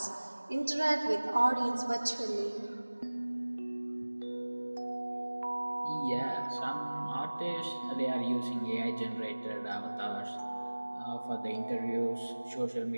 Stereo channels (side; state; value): both; inverted; correlation -1.00